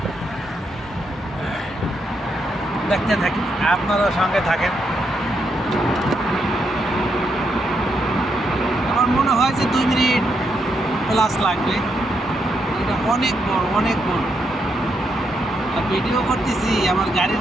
দেখতে থাকি, আপনারাও সঙ্গে থাকেন। আমার মনে হয় যে 2 মিনিট প্লাস লাগবে। এটা অনেক বড়, অনেক বড়। আর ভিডিও করতেছি, আমার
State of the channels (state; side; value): normal; both; correlation 0.79